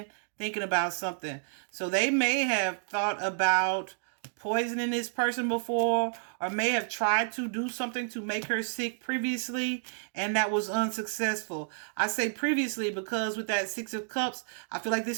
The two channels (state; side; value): silent; left; digital silence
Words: thinking about something. So they may have thought about poisoning this person before, or may have tried to do something to make her sick previously, and that was unsuccessful. I say previously because with that Six of Cups, I feel like